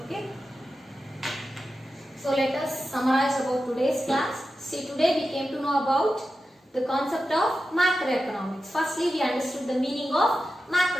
Okay, so let us summarize about today's class. See, today we came to know about the concept of macroeconomics. Firstly, we understood the meaning of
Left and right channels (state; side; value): normal; both; correlation 0.92